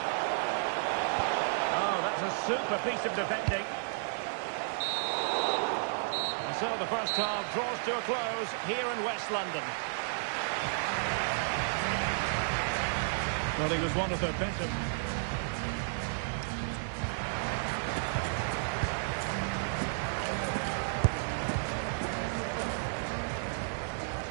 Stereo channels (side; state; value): left; silent; 56 dB below the other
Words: Oh, that's a super piece of defending. And so the first half draws to a close here in West London. Well, he was one of the better.